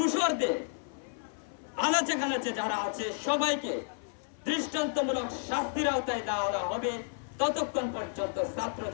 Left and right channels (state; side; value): silent; right; 57 dB below the other